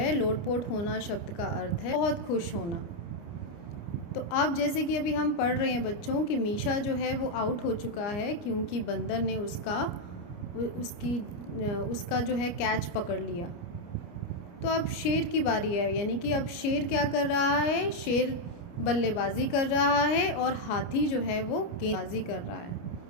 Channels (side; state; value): right; late; 29 ms